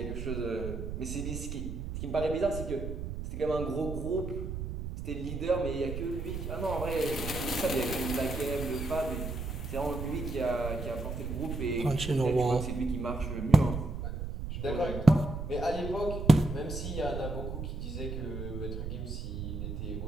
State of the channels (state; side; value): noise; right; rumble, 5 dB below the sound